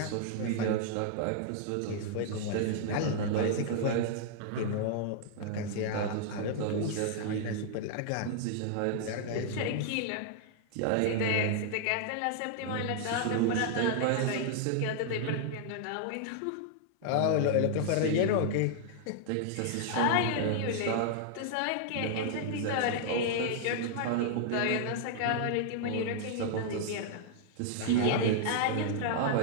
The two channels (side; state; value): both; different; correlation -0.01